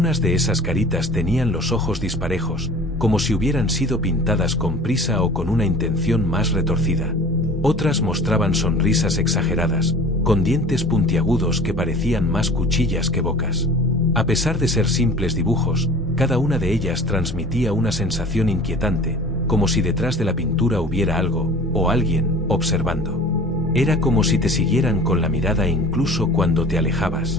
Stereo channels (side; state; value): both; normal; correlation 0.43